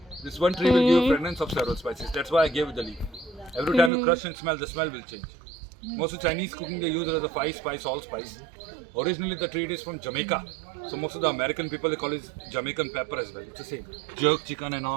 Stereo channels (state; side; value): drops out; left; at 3.9 s